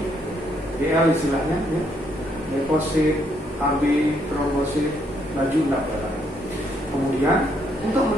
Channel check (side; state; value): both; normal; correlation 0.72